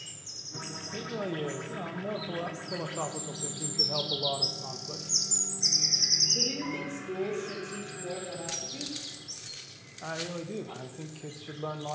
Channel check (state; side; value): identical; both; correlation 1.00